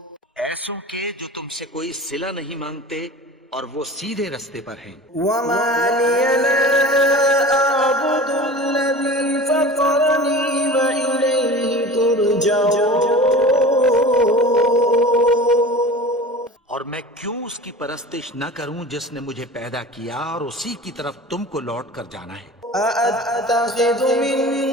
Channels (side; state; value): both; normal; correlation 0.37